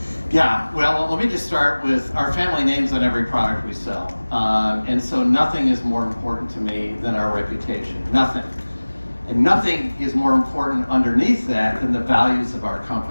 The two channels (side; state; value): both; inverted; correlation -1.00